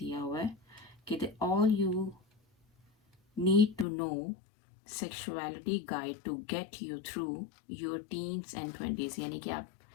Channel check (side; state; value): right; drops out; at 3.9 s